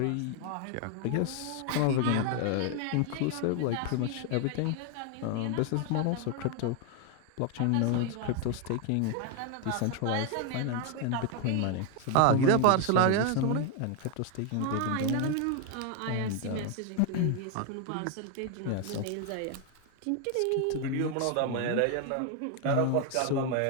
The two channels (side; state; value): both; different; correlation 0.01